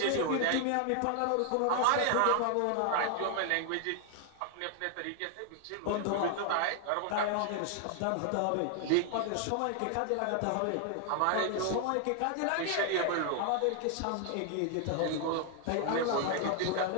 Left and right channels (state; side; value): different; both; correlation 0.00